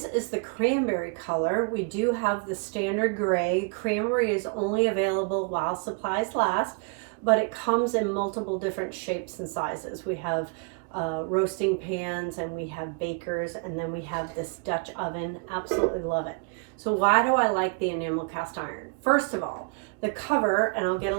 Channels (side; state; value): left; quieter; 36.2 dB